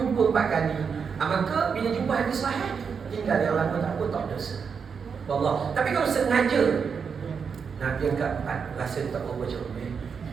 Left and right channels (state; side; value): quieter; left; 6.2 dB